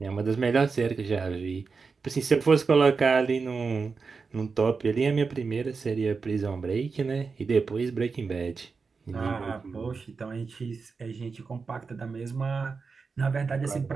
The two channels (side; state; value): left; quieter; 4.8 dB